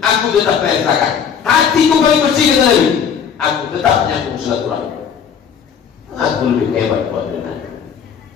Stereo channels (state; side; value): quieter; right; 7.4 dB